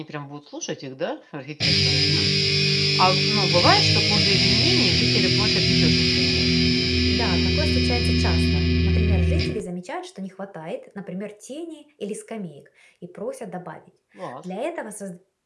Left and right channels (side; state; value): both; identical; correlation 1.00